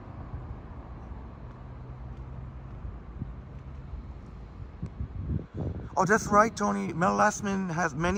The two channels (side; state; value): both; identical; correlation 1.00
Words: Oh, that's right, Tony. Mel Lastman has